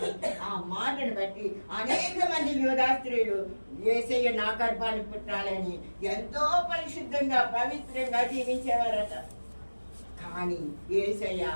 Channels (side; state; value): both; inverted; correlation -1.00